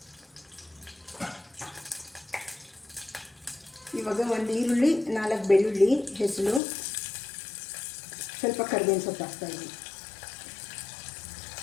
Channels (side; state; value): right; drops out; at 6.6 s